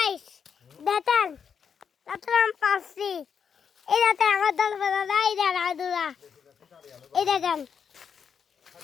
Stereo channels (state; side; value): quieter; right; 7.0 dB